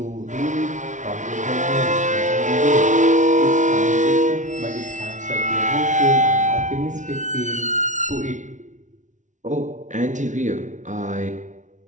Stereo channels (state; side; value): late; left; 0.36 ms